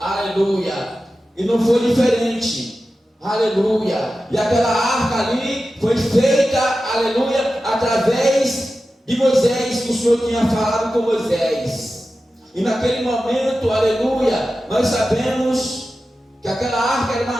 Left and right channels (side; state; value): both; normal; correlation 0.93